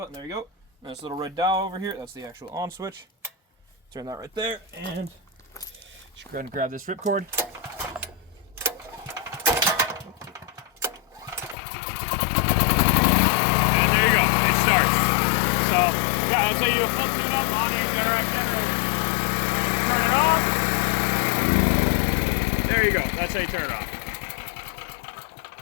There you go. And this little red dial over here, that's the actual on switch. Turn that right there, and just go ahead and grab this ripcord. And there you go. Yeah, that's how you do a full tune-up on a Generac generator. And you turn it off. There you go. That's how you turn it off.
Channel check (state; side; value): drops out; right; at 11.6 s